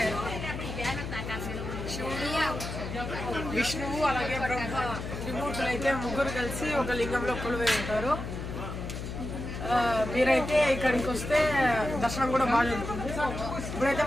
శివుడు, విష్ణువు అలాగే బ్రహ్మ త్రిమూర్తులు అయితే ముగ్గురు కలిసి ఒక లింగంలో కొలువై ఉంటారు. మీరైతే ఇక్కడికి వస్తే దర్శనం కూడా బాగా జరుగుతుంది. ఇప్పుడైతే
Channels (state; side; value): noise; left; hum, 7 dB below the sound